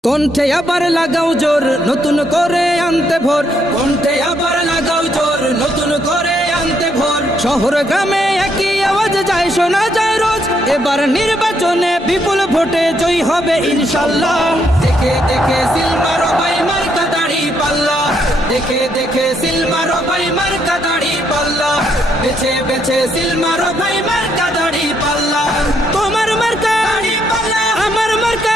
কণ্ঠে আবার লাগাও জোর নতুন করে আনতে ভোর, কণ্ঠে আবার লাগাও জোর নতুন করে আনতে ভোর। শহর গ্রামে একই আওয়াজ যায় শোনা যায় রোজ, এবার নির্বাচনে বিপুল ভোটে জয় হবে ইনশাল্লাহ। দেখে দেখে সিল মারো ভাই মার্কা দাড়ি পাল্লা, দেখে দেখে সিল মারো ভাই মার্কা দাড়ি পাল্লা, বেছে বেছে সিল মারো ভাই মার্কা দাড়ি পাল্লা। তোমার মার্কা দাড়ি পাল্লা, আমার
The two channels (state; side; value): normal; both; correlation 0.74